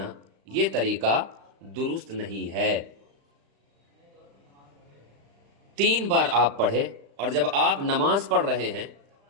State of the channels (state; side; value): late; left; 35 ms